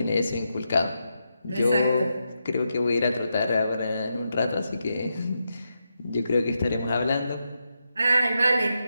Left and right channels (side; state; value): both; inverted; correlation -0.85